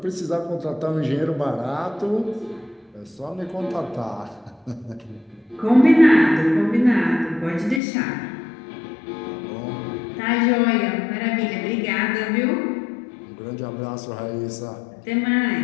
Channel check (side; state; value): right; drops out; at 7.8 s